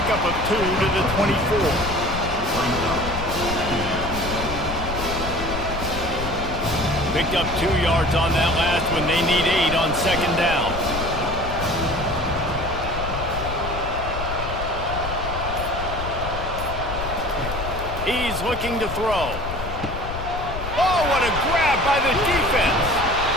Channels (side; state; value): left; noise; rumble, 7 dB below the sound